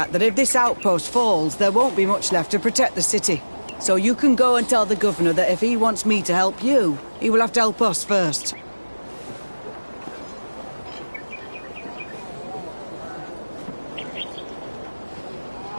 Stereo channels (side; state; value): both; inverted; correlation -1.00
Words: that if this outpost falls, there won't be much left to protect the city. So you can go and tell the governor that if he wants me to help you, he will have to help us first.